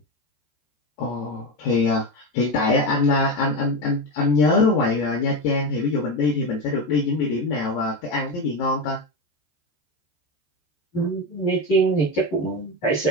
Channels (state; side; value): late; right; 14 ms